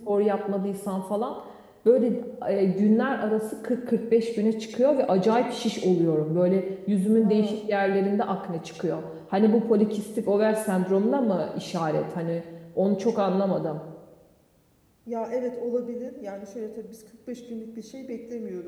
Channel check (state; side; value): identical; both; correlation 1.00